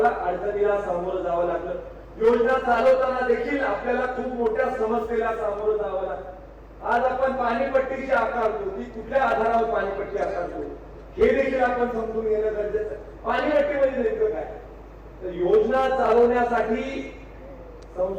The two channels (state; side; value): identical; both; correlation 1.00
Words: अडचणीला सामोरं जावं लागलं. योजना चालवताना देखील आपल्याला खूप मोठ्या समस्येला सामोरं जावं लागलं. आज आपण पाणीपट्टीची आकारतो ती कुठल्या आधारावर पाणीपट्टी आकारतो हे देखील आपण समजून घेणं गरजेचं आहे. पाणीपट्टी म्हणजे नेमकं काय? तर योजना चालवण्यासाठी